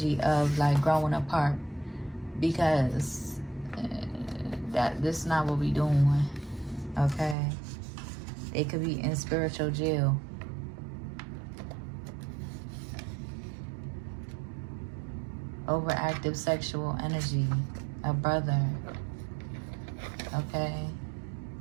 of like growing apart, because this is not what we doing. Okay, they could be in spiritual jail. Overactive sexual energy, a brother. Okay.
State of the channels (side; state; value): left; drops out; at 7.4 s